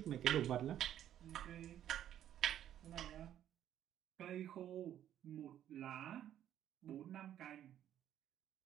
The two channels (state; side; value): quieter; left; 11.1 dB